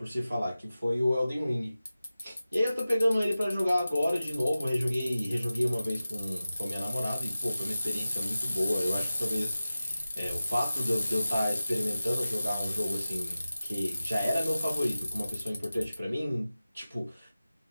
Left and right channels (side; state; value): both; inverted; correlation -0.95